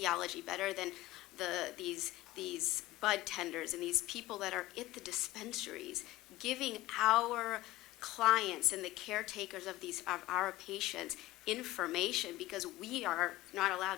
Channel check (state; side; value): quieter; right; 17.2 dB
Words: better than these bud tenders and these people that are at the dispensaries giving our clients and the caretakers of our patients information because we are not allowed